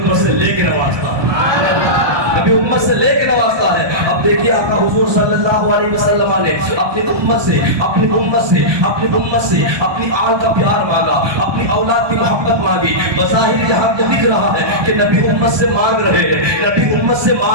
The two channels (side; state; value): left; late; 1.2 ms